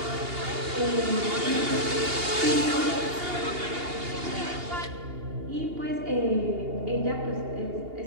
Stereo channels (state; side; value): late; left; 2.8 ms